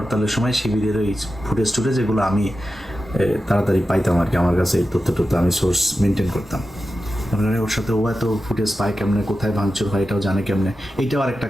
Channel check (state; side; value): normal; both; correlation 0.92